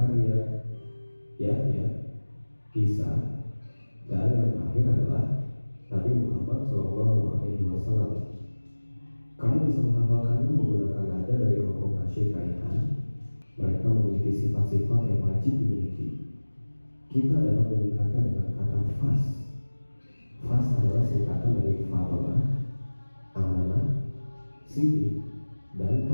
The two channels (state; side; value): inverted; both; correlation -1.00